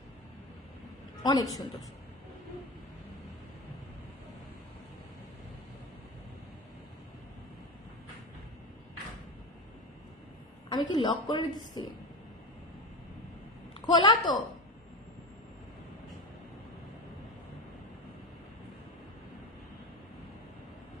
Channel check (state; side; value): normal; both; correlation 0.24